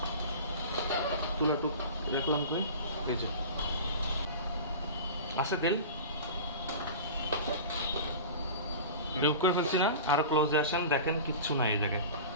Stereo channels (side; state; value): both; inverted; correlation -0.33